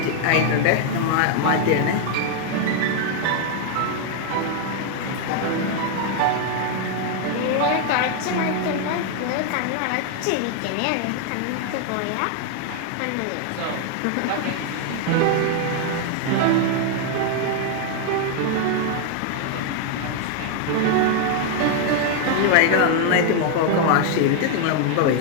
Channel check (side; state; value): both; different; correlation 0.00